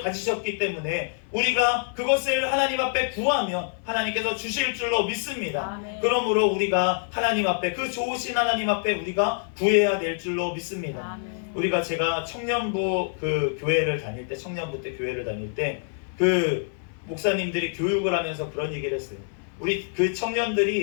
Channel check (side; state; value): right; silent; 55 dB below the other